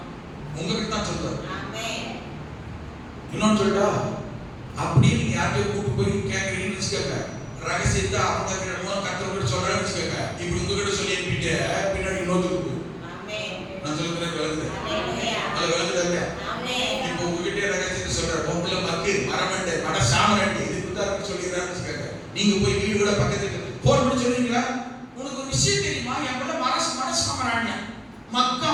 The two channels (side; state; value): both; identical; correlation 1.00